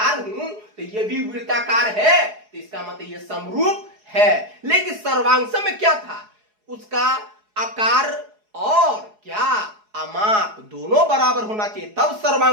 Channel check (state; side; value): late; left; 4.8 ms